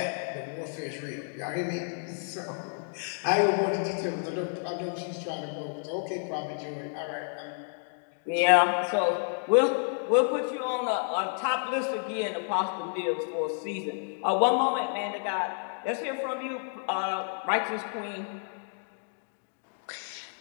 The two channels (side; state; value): right; silent; 58 dB below the other